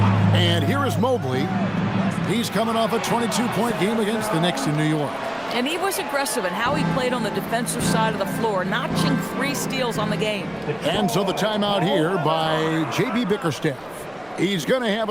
And here is Mobley. He's coming off a 22-point game against the Knicks in New York. And he was aggressive in how he played on the defensive side of the floor, notching 3 steals on the game. And so the timeout here by J.B. Bickerstaff. He's going to have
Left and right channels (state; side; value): noise; right; rumble, 29 dB below the sound